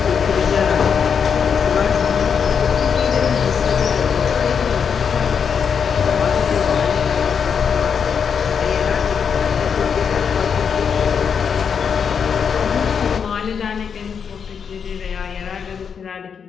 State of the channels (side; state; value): right; quieter; 6.8 dB